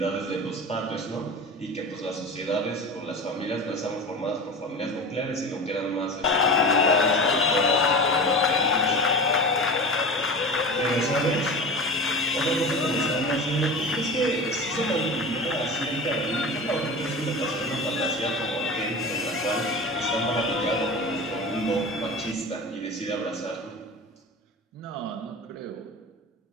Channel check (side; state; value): both; normal; correlation 0.31